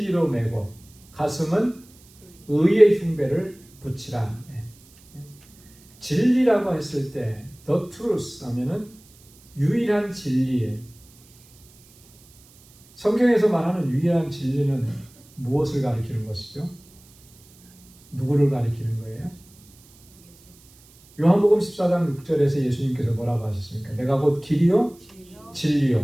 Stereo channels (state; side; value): noise; right; hiss, 27 dB below the sound